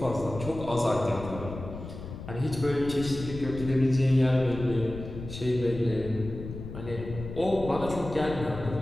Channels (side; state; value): left; noise; rumble, 10 dB below the sound